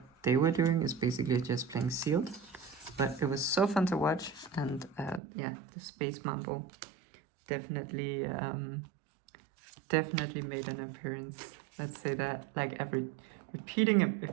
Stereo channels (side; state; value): left; drops out; at 5.2 s